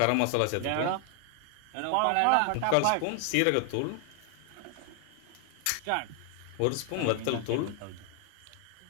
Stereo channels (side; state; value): both; different; correlation 0.00